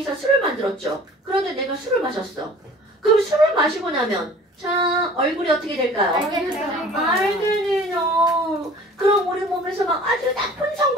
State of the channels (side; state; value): both; normal; correlation 0.47